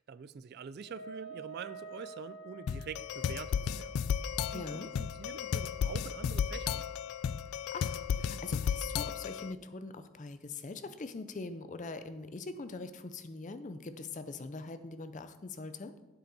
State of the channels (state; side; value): quieter; right; 5.4 dB